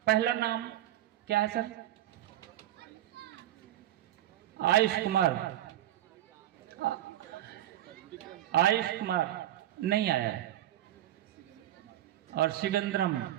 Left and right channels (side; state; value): left; quieter; 13.2 dB